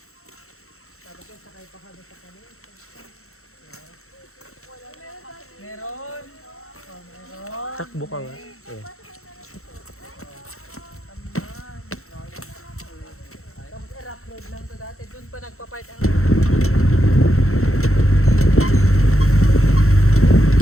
Tapos yung sakay pa kami sa kanila. Meron! Oh, meron! Takbo ka nga. Eh. Tapos rough road lang to dati. Doon pa nagpa-park ang...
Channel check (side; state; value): right; late; 0.63 ms